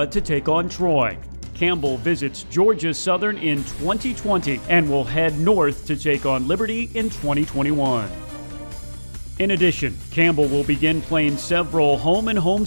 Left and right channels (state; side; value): inverted; both; correlation -1.00